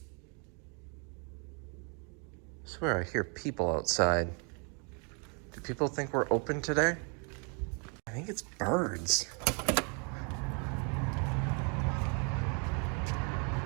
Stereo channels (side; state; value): left; quieter; 36.6 dB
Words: I swear I hear people outside. Do people think we're open today? I think it's birds.